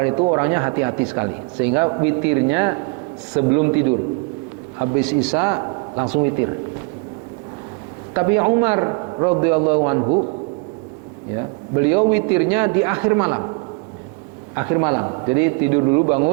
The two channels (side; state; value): left; quieter; 32.3 dB